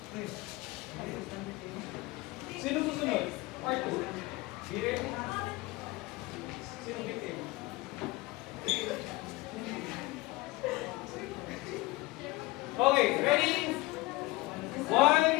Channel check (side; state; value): right; quieter; 21.0 dB